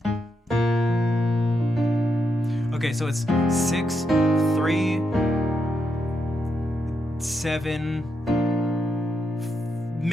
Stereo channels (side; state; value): both; normal; correlation 0.82